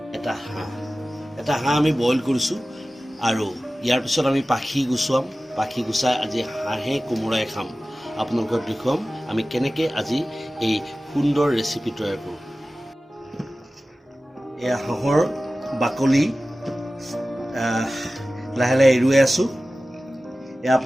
এটা হাঁহ আমি বইল কৰিছোঁ আৰু ইয়াৰ পিছত আমি পাখি গুচাই আজি হাঁহে কোমোৰাই খাম। আপোনালোকক দেখুৱাম আমি কেনেকৈ আজি এই সুন্দৰ ৰেচিপি তৈয়াৰ কৰোঁ। এয়া হাঁহৰ বাকলি লাহে লাহে এৰুৱাই আছোঁ। এয়া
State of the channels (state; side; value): normal; both; correlation 0.96